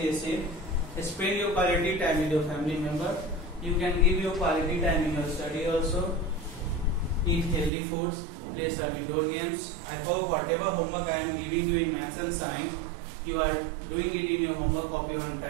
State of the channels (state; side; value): drops out; left; at 7.7 s